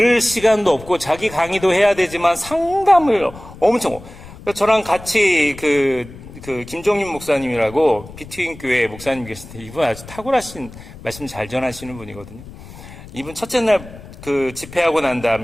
시간도 없고 자기 강의도 해야 되지만 상담을 엄청. 저랑 같이 그 김종인 목사님이라고 비트윈 교회 목사님 계신데 이분 아주 탁월하신 말씀 잘 전하시는 분이거든요. 이분 첫째 날 그 집회하고 난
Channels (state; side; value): noise; left; rumble, 17 dB below the sound